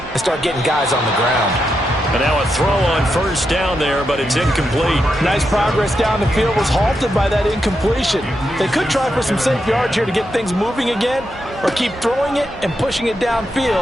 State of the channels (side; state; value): both; normal; correlation 0.84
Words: and start getting guys on the ground. And now a throw on first down there, but it's incomplete. Nice progress down the field was halted by that incompletion. They could try for some safe yards here to get things moving again, or keep throwing it and pushing it